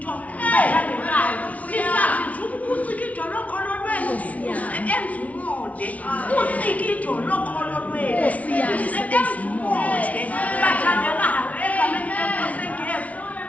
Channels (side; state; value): right; late; 0.068 ms